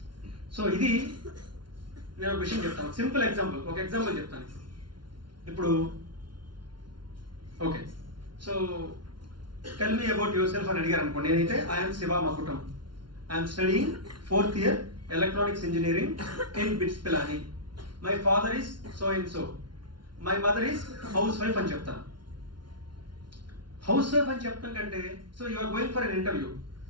So ఇది నేను ఒక విషయం చెప్తాను, సింపుల్ ఎగ్జాంపుల్, ఒక ఎగ్జాంపుల్ చెప్తాను. ఇప్పుడు okay, so tell me about yourself అని అడిగారు అనుకోండి. నేనైతే I'm Shiva Makutam, I'm studying 4th year electronics engineering in BITS Pilani. My father is so and so, my mother is housewife అని చెప్తాను. హౌస్ వైఫ్ అని చెప్పడం కంటే, so you are going for an interview,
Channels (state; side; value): late; left; 0.71 ms